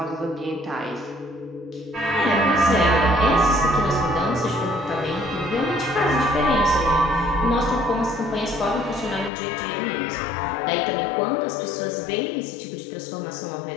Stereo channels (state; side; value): drops out; right; at 9.3 s